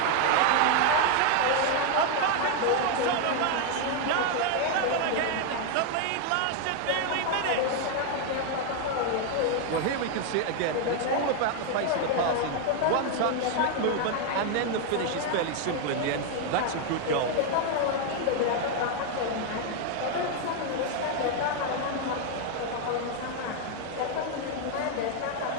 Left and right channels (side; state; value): both; different; correlation 0.01